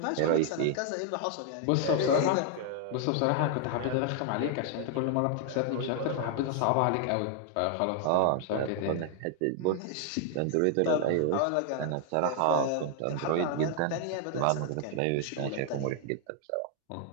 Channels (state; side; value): different; both; correlation 0.00